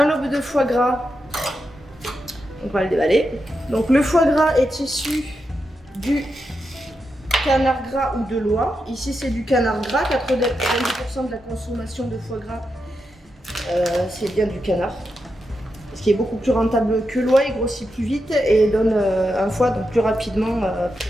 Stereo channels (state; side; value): normal; both; correlation 0.86